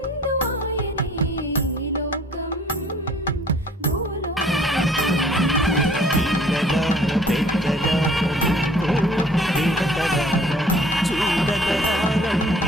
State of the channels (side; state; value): both; normal; correlation 0.55